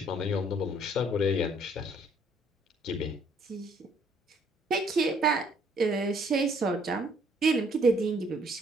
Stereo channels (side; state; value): both; normal; correlation 0.64